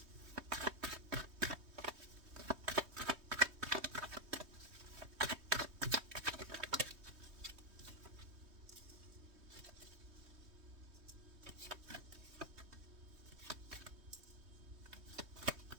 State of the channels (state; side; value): late; left; 3.2 ms